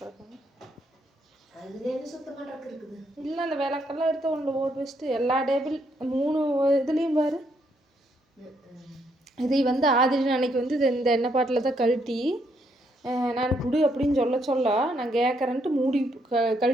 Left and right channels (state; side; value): normal; both; correlation 0.74